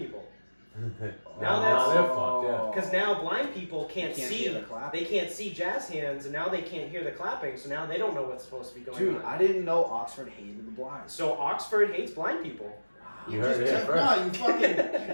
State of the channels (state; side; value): inverted; both; correlation -1.00